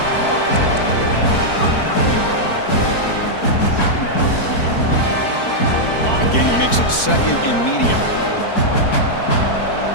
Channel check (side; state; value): right; late; 4.6 ms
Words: Again, he makes it 2nd and medium.